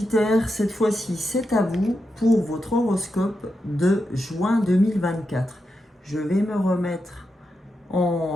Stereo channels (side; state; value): both; normal; correlation 0.87